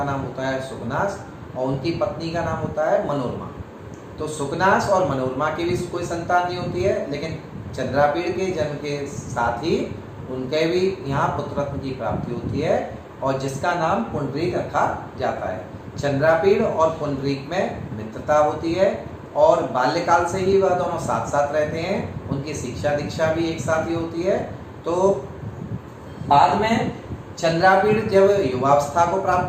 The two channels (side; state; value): both; identical; correlation 1.00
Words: नाम होता है सुकनास और उनकी पत्नी का नाम होता है मनोरमा। तो सुकनास और मनोरमा की भी कोई संतान नहीं होती है, लेकिन चंद्रापीड़ के जन्म के साथ ही उनके भी यहाँ पुत्ररत्न की प्राप्ति होती है और जिसका नाम पुंडरीक रखा जाता है। चंद्रापीड़ और पुंडरीक में मित्रता होती है और बाल्यकाल से ही वह दोनों साथ साथ रहते हैं। उनकी शिक्षा दीक्षा भी एक साथ ही होती है। तो बाद में चंद्रापीड़ जब युवावस्था को